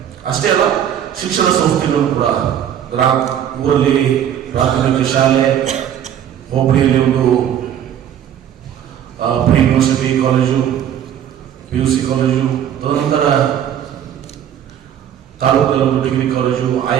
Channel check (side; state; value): left; quieter; 9.9 dB